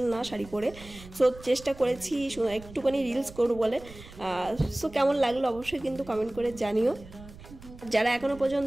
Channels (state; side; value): noise; right; rumble, 18 dB below the sound